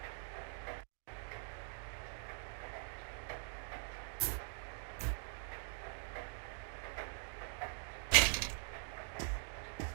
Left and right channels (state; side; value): silent; left; digital silence